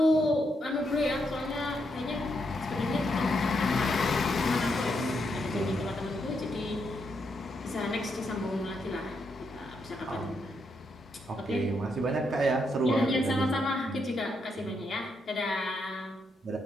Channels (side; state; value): both; normal; correlation 0.79